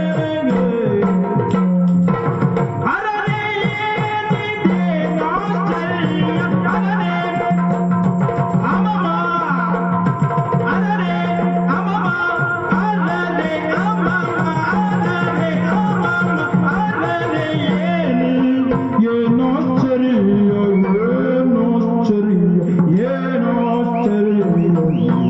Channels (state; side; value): identical; both; correlation 1.00